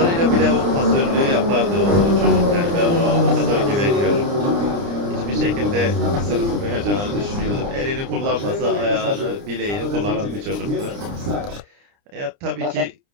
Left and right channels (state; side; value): late; left; 30 ms